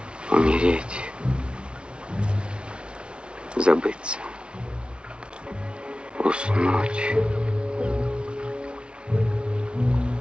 Умереть, забыться, уснуть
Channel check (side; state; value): left; late; 0.057 ms